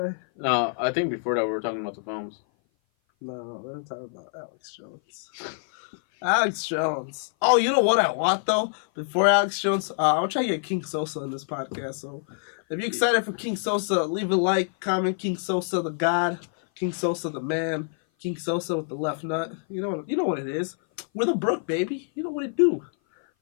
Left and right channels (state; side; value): silent; right; 57 dB below the other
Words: No, I think before that we were talking about the films. No, we're talking about Alex Jones. Alex Jones. Oh, you know what I want though? Before Alex Jones, I'll try to get King Sosa in this podcast. So, if you're excited for King Sosa, leave a like, comment. King Sosa, the God. King Sosa, the man. King Sosa with the left nut. You know what it is. We're the Brook, baby. You know what it do.